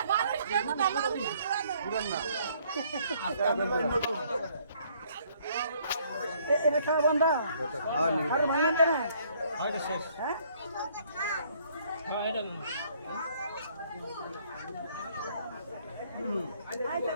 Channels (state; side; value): inverted; both; correlation -0.63